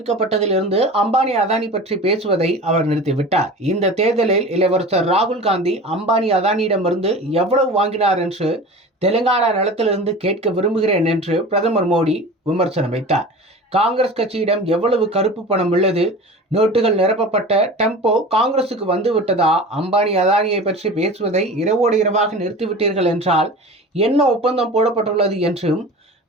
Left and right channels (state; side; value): normal; both; correlation 0.35